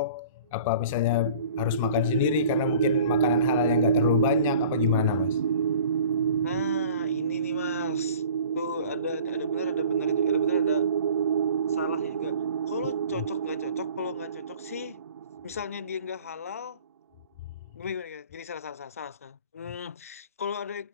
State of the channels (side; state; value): both; inverted; correlation -0.46